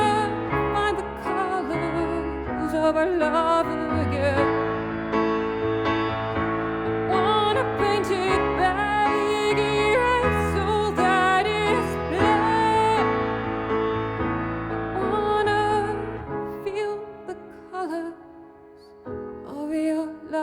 find the colors of our love again. Wanna paint it big, erase all that is black. Wanna feel the colors of your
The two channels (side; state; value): both; identical; correlation 1.00